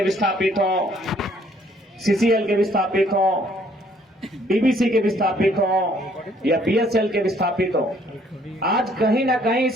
विस्थापित हों, सीसीएल के विस्थापित हों, डीबीसी के विस्थापित हों या बीएसएल के विस्थापित हों, आज कहीं ना कहीं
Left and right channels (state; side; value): normal; both; correlation 0.63